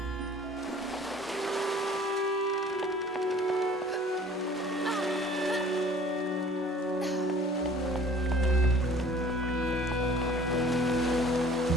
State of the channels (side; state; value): both; normal; correlation 0.49